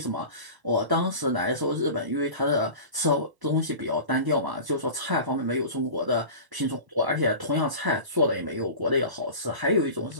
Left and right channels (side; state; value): left; late; 1.1 ms